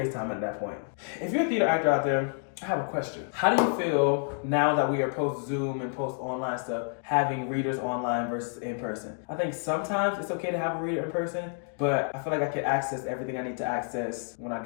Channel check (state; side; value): silent; right; 59 dB below the other